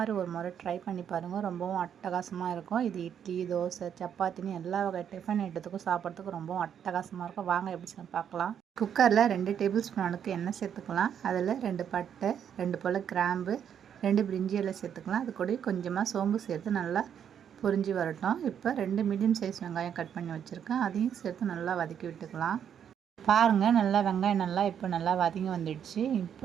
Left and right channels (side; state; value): left; quieter; 8.6 dB